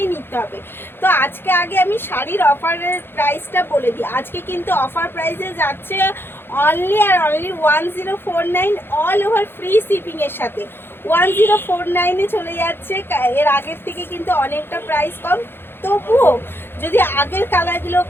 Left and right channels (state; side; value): late; right; 0.10 ms